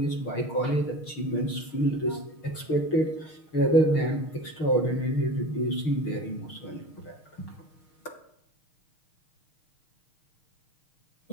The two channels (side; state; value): right; late; 6.4 ms